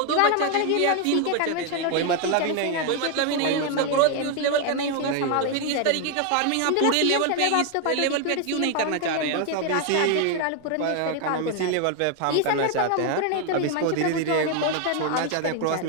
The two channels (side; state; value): both; different; correlation 0.01